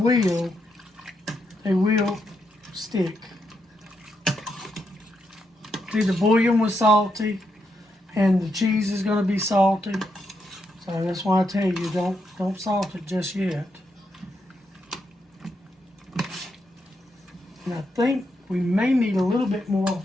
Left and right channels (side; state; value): both; normal; correlation 0.81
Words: stick. See, the bouillon was salty and the cheese is going to be salty. So that's why I tell you don't salt it just yet. And I think we may need a little bit more